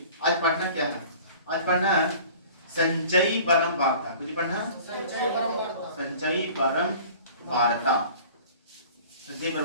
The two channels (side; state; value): both; inverted; correlation -0.45